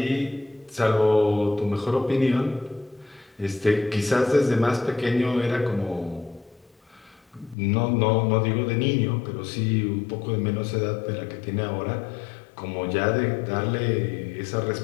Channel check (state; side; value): drops out; right; at 7.6 s